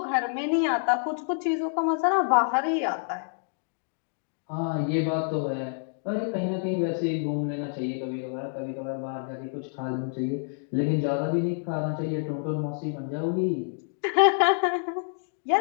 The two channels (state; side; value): silent; right; digital silence